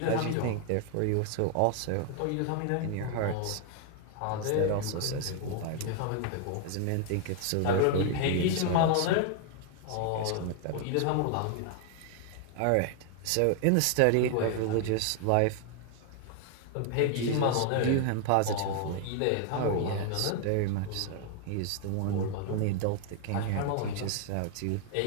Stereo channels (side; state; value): both; different; correlation 0.00